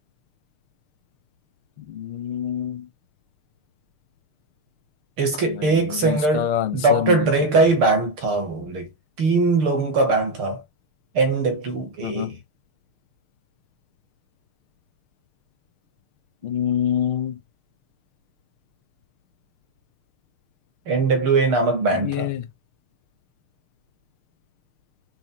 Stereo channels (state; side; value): late; left; 6.6 ms